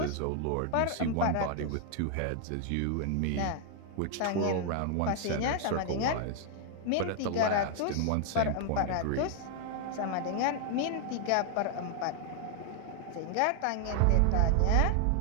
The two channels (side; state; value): both; different; correlation 0.00